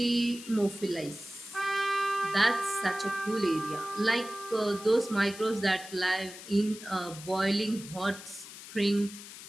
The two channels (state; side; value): noise; left; hiss, 14 dB below the sound